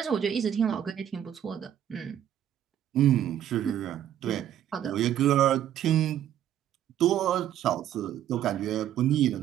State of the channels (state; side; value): quieter; left; 10.8 dB